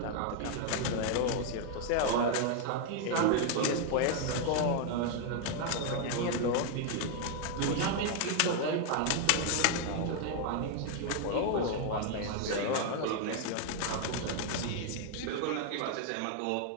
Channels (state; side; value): different; both; correlation 0.00